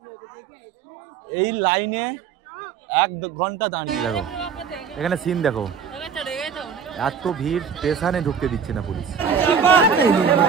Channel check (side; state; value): left; quieter; 6.7 dB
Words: এই লাইনে 1 ঘন্টা দাঁড়িয়ে দেখো, এখানে সিন দেখো, এত ভিড়, স্টেশনে ঢুকতে দিচ্ছে না পুলিশ।